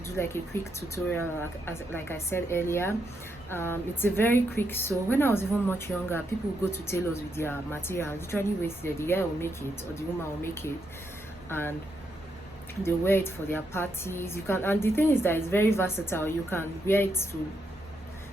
like a quick tutorial, like I said earlier. It's a very quick. So when I was even much younger, people would go to tailors with their material, literally wasted. The guy will make it or the woman will make it, and they wear it for their parties. You can, and the thing is that it's very versatile. You can wear it to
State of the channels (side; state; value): both; normal; correlation 0.80